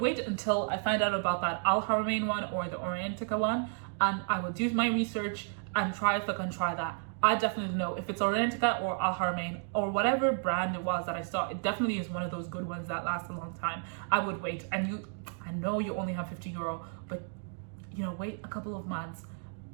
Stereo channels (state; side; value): silent; left; 56 dB below the other